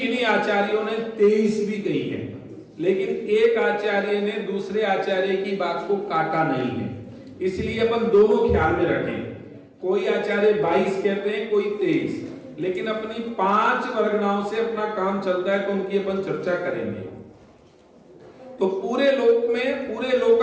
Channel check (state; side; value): identical; both; correlation 1.00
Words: आचार्यों ने 23 भी कही है, लेकिन एक आचार्य ने दूसरे आचार्य की बात को काटा नहीं है। इसलिए अपन दोनों ख्याल में रखें। कोई आचार्य 22 कहते हैं, कोई 23, लेकिन अपनी 5 वर्गनाओं से अपना काम चलता है, तो उनकी अपन चर्चा करेंगे। तो पूरे लोक में, पूरे